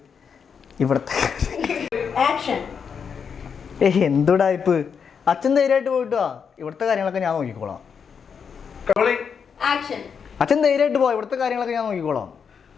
ഇവിടത്തെ എന്തുടായ്പ്? അച്ഛൻ ധൈര്യമായിട്ട് പോയിട്ടോ. ഇവിടുത്തെ കാര്യങ്ങളൊക്കെ ഞാൻ നോക്കിക്കോളാം. അച്ഛൻ ധൈര്യമായിട്ട് പോവാം. ഇവിടുത്തെ കാര്യങ്ങളൊക്കെ ഞാൻ നോക്കിക്കോളാം.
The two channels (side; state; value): right; quieter; 6.6 dB